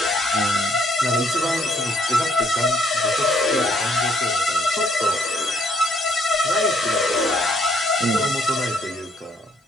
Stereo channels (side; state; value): both; normal; correlation 0.67